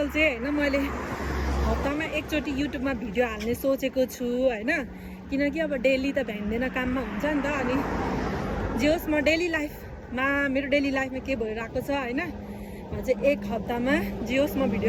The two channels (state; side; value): identical; both; correlation 1.00